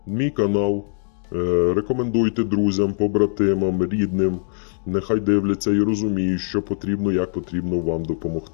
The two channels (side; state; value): right; silent; digital silence